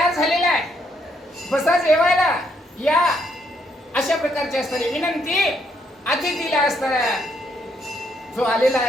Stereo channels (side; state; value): both; normal; correlation 0.73